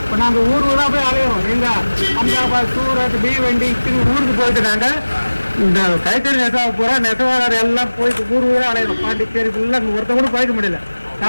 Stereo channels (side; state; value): both; inverted; correlation -1.00